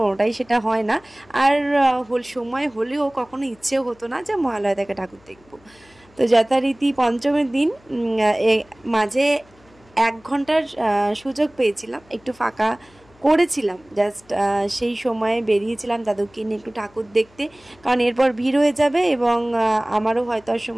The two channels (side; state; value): left; noise; hum, 29 dB below the sound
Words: সেটা হয় না। আর সময় হলেও কখনো ইচ্ছেও হতো না যে মহালয়া থেকে ঠাকুর দেখবো। তো যথারীতি পঞ্চমীর দিন মাঝে 1 ঘন্টার সুযোগ পেয়েছিলাম, একটু ফাঁকা করেছিলাম, জাস্ট সেই সময়ে বেরিয়েছিলাম দাদুকে নিয়ে একটু ঠাকুর দেখতে, কারণ এরপর ভিড় হয়ে যাবে এবং আমারও হয়তো আর